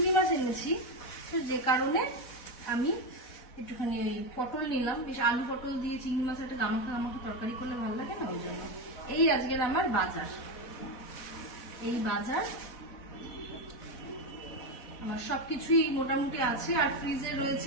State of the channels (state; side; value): late; right; 4.1 ms